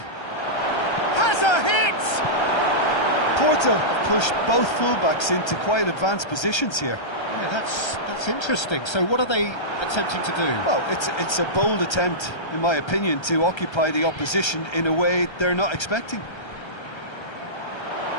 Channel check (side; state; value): right; late; 1.3 ms